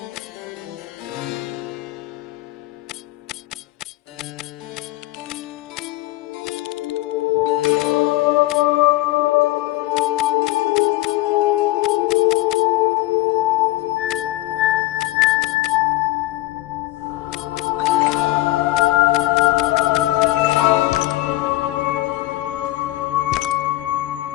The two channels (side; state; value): right; quieter; 17.7 dB